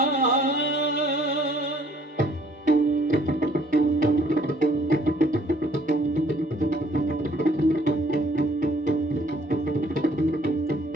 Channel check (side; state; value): both; normal; correlation 0.61